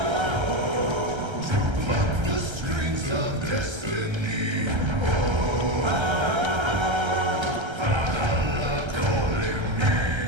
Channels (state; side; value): late; left; 1.3 ms